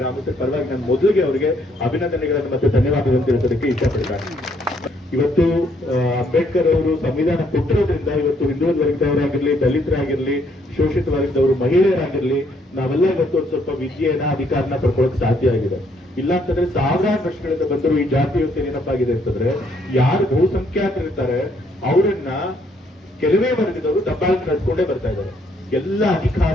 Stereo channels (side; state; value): both; normal; correlation 0.69